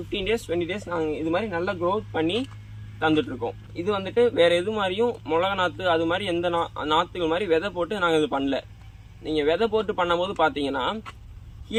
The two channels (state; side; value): identical; both; correlation 1.00